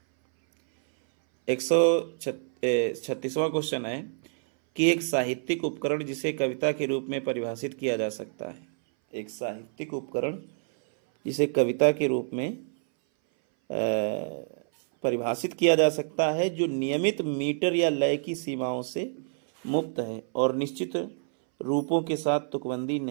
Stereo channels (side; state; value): left; silent; 59 dB below the other